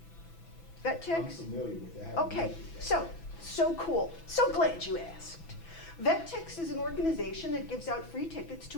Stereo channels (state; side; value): late; right; 6.0 ms